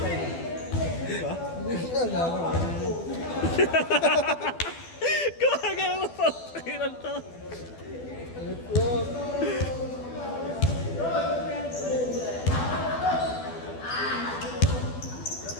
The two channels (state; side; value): late; right; 12 ms